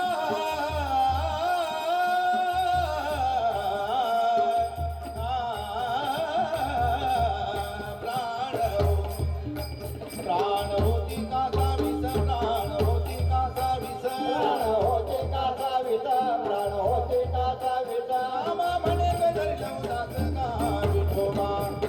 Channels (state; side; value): identical; both; correlation 1.00